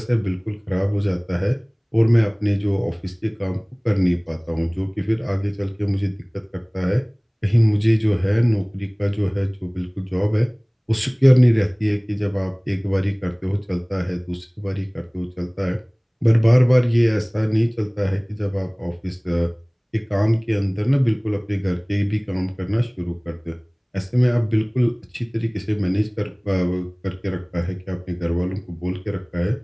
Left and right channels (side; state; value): both; identical; correlation 1.00